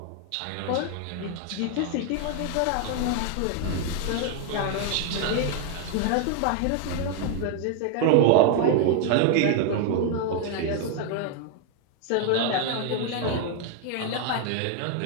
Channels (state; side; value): different; both; correlation 0.00